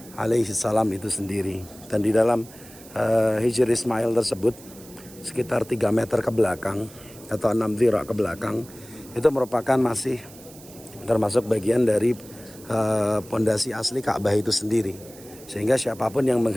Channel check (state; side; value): noise; right; hiss, 20 dB below the sound